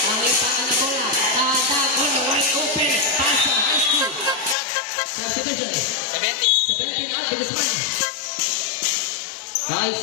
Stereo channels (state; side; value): drops out; right; at 4.5 s